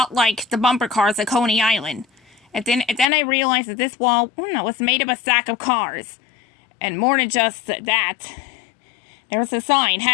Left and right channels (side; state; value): right; drops out; at 3.1 s